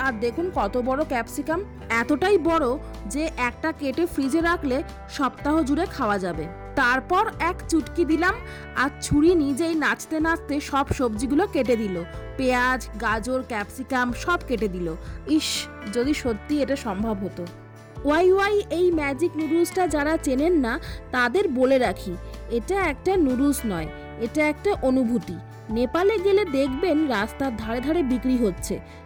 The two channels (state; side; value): identical; both; correlation 1.00